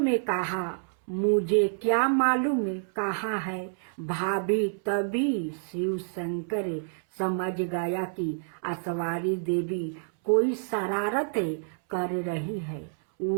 कहा, मुझे क्या मालूम कहाँ है भाभी। तभी शिव शंकर समझ गया कि सवारी देवी कोई शरारत कर रही है।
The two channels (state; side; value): silent; left; 59 dB below the other